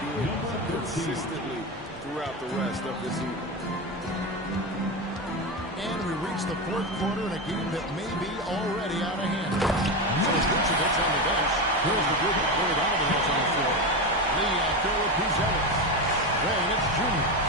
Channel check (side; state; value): both; normal; correlation 0.17